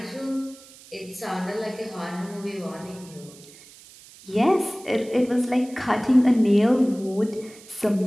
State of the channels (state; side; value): noise; right; hiss, 21 dB below the sound